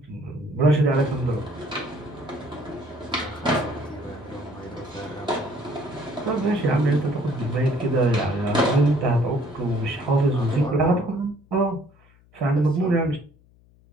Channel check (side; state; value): left; noise; hum, 29 dB below the sound